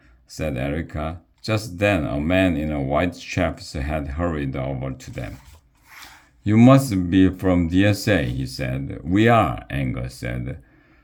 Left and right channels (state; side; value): identical; both; correlation 1.00